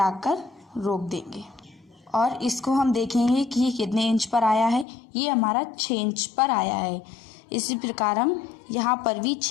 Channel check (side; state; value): right; drops out; at 4.9 s